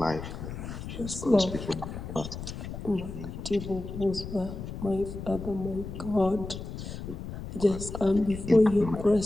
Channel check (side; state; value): left; noise; rumble, 8 dB below the sound